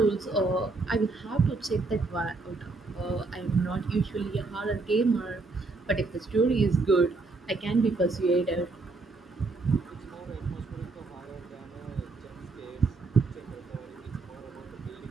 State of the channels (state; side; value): quieter; left; 3.6 dB